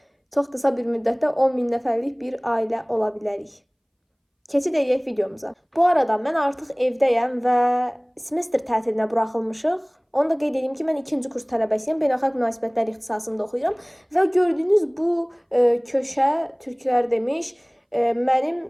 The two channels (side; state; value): both; identical; correlation 1.00